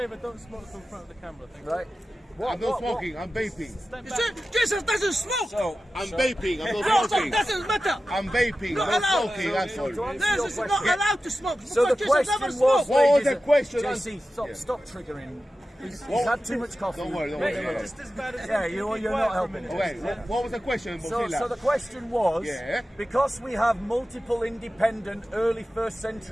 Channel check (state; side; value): normal; both; correlation 0.94